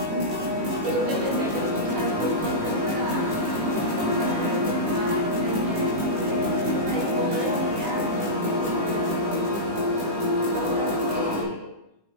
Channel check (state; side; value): late; left; 18 ms